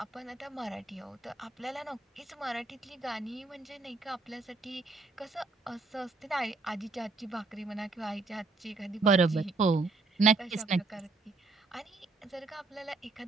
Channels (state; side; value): quieter; left; 3.8 dB